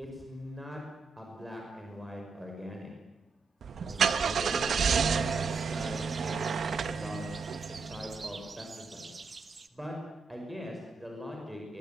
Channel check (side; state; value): left; quieter; 4.8 dB